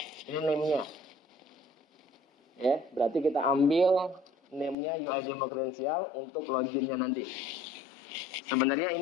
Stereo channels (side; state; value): right; drops out; at 4.8 s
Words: Ini name-nya. Ya, berarti kita ambil name-nya UI demo credential untuk login-nya nanti. Sebenarnya